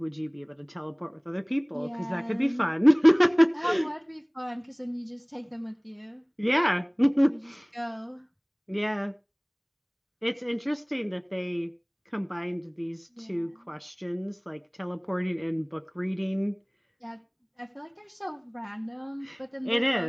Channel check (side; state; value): both; identical; correlation 1.00